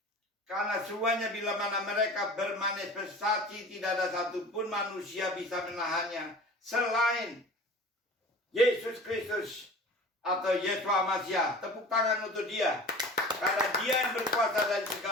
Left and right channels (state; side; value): normal; both; correlation 0.40